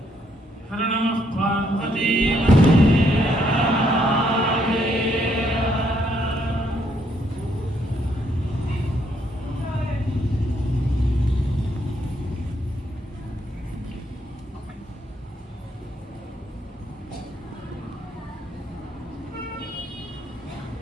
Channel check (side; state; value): both; normal; correlation 0.72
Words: हर नमः पार्वती